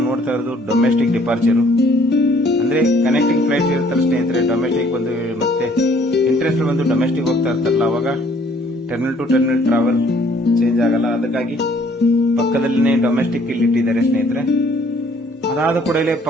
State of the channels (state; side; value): normal; both; correlation 0.60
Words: ನೋಡ್ತಾ ಇರೋದು ಡೊಮೆಸ್ಟಿಕ್ ಡಿಪಾರ್ಚರ್, ಅಂದ್ರೆ ಕನೆಕ್ಟಿಂಗ್ ಫ್ಲೈಟ್ ಇರ್ತಾರೆ ಸ್ನೇಹಿತರೆ. ಡೊಮೆಸ್ಟಿಕ್ ಒಂದು ಮತ್ತೆ ಇಂಟರ್ನ್ಯಾಷನಲ್ ಒಂದು ಡೊಮೆಸ್ಟಿಕ್ ಹೋಗ್ತಾ ಇರ್ತಾರಲ್ಲ, ಅವಾಗ terminal to terminal travel change ಆಗಲ್ಲ. ಅದಕ್ಕಾಗಿ ಪಕ್ಕದಲ್ಲಿನೇ ಡೊಮೆಸ್ಟಿಕ್ ಇಲ್ಲಿ ಇಟ್ಟಿದ್ದಾರೆ ಸ್ನೇಹಿತರೆ. ಅದಾದ ಕೂಡಲೇ